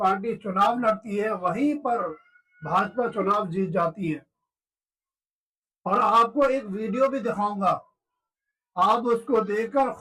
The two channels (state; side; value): identical; both; correlation 1.00